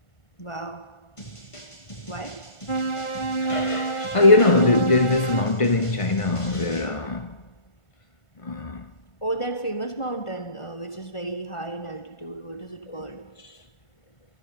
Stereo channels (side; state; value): right; late; 1.5 ms